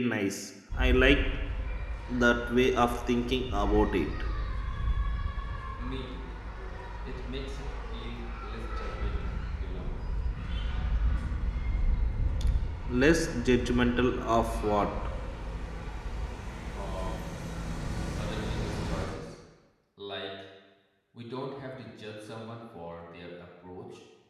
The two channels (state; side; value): identical; both; correlation 1.00